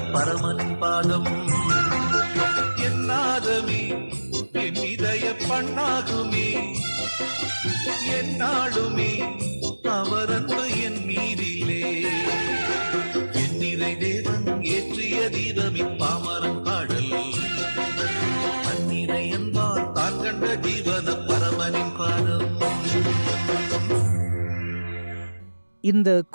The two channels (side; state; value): both; inverted; correlation -1.00